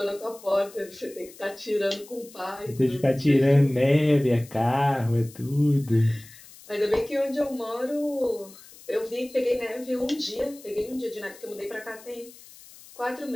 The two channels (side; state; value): left; noise; hiss, 21 dB below the sound